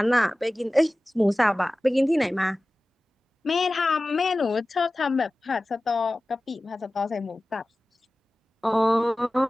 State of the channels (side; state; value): both; normal; correlation 0.96